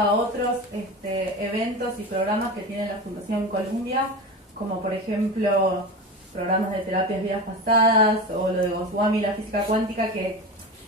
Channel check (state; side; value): normal; both; correlation 0.26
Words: otros eventos y programas que tiene la Fundación Columbia, como por ejemplo programas de terapias vidas pasadas o lo de Goswami, la física cuántica, que